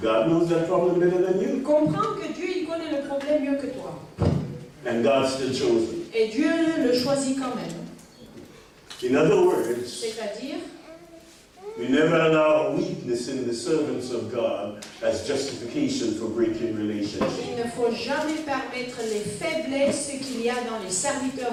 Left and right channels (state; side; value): identical; both; correlation 1.00